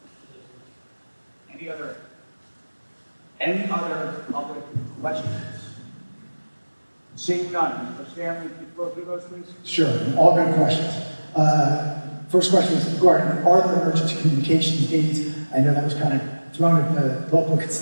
Any other public questions? Seeing none, Mr. Stanley, can you go through those, please? Sure, all good questions. First question is regarding, are there emergency communications needs? I know that was kind of thrown at the local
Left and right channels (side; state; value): both; inverted; correlation -1.00